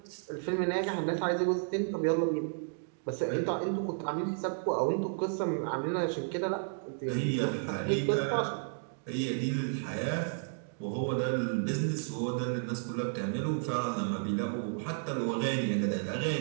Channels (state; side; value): silent; left; digital silence